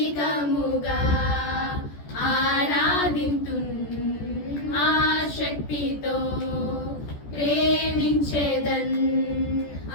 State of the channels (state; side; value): late; right; 14 ms